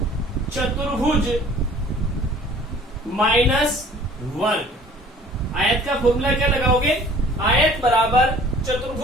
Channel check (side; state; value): both; normal; correlation 0.51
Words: चतुर्भुज माइनस वर्ग। आयत का फॉर्मूला क्या लगाओगे, आयत बराबर